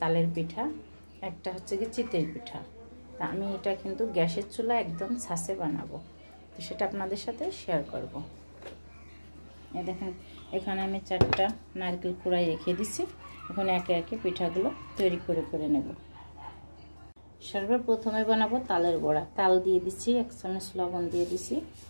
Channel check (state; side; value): inverted; both; correlation -1.00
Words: পিঠা, একটা হচ্ছে গিয়ে চিতই পিঠা। তা আমি এটা কিন্তু গ্যাসের চুলা একদম ছাঁচে বানাবো, তো সেটা আপনাদের সাথে শেয়ার করব। এই দেখেন, এখানে আমি 4টা নারকেল কুড়াই রেখে দিছি। এখন একে একে পিঠাগুলো তৈরি করে নেব। সর্বপ্রথমে বানাবো তালের বড়া। তাল দিয়ে দিচ্ছি, 1 চামচ লবণ দিয়ে দিছি,